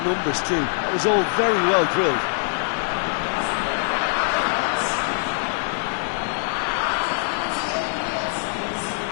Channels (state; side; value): silent; right; 63 dB below the other